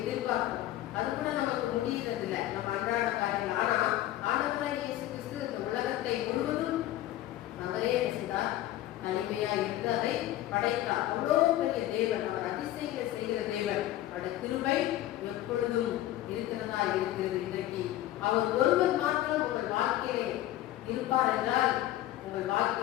எதிர்பார்ப்போம். அது கூட நமக்கு முடியறது இல்லை, நம்ம அன்றாட காரியங்கள். ஆனா ஆண்டவராகிய இயேசு கிறிஸ்து இந்த உலகத்தை முழுவதும் அவரே செய்தார், தனிமையா இருந்து அதை படைத்தார். அவ்வளோ பெரிய தேவன், அவர் அதிசயங்களை செய்கிற தேவன். அவருடைய கிருபை எப்பொழுதும் இருக்கிறதா இருக்கிறது. இன்றைக்கு அவர் ஒருவர் மாத்திரம் உங்கள் வாழ்க்கையிலே இருப்பார் என்றால் உங்கள்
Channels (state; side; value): quieter; right; 14.3 dB